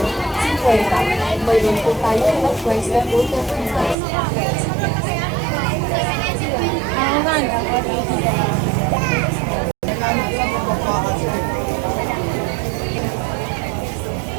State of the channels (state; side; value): drops out; left; at 4.0 s